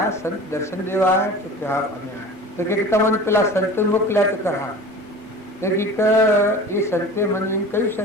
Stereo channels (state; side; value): normal; both; correlation 0.38